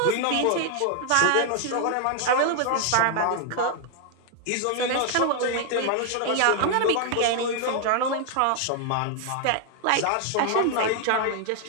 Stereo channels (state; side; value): different; both; correlation 0.00